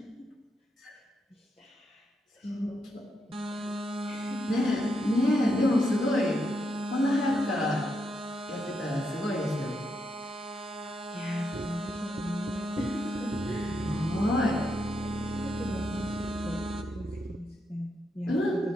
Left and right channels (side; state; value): both; normal; correlation 0.81